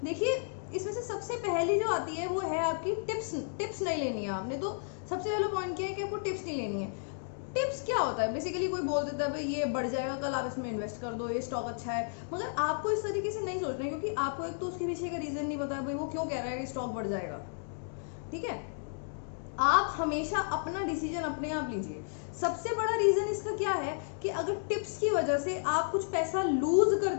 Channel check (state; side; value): silent; right; digital silence